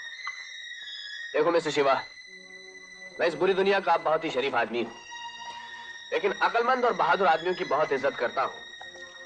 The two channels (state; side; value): identical; both; correlation 1.00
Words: देखो मिस्टर शिवा, मैं इस बुरी दुनिया का बहुत ही शरीफ आदमी हूं, लेकिन अक्लमंद और बहादुर आदमियों की बहुत इज्जत करता हूं।